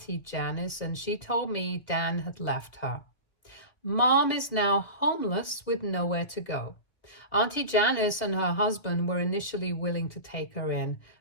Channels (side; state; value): right; late; 2.3 ms